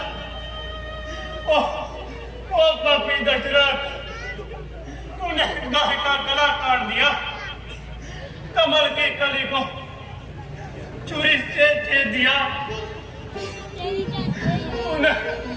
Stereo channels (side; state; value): both; identical; correlation 1.00